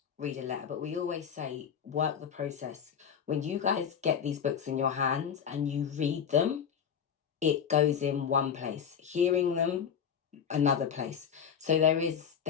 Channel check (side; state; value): right; quieter; 7.7 dB